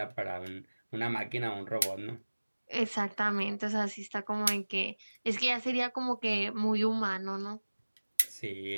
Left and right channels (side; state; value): both; inverted; correlation -1.00